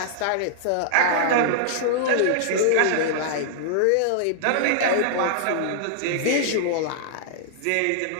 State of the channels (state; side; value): different; both; correlation -0.01